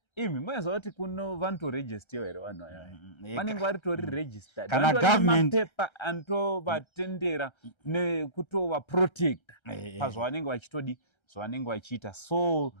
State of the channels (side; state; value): right; late; 1.3 ms